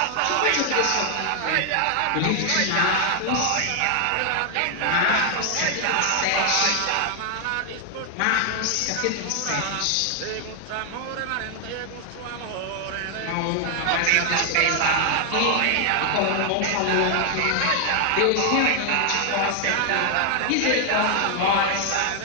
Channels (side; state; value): both; different; correlation 0.00